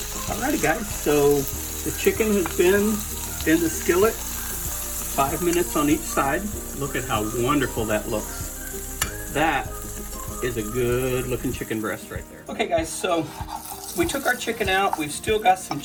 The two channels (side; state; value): both; identical; correlation 1.00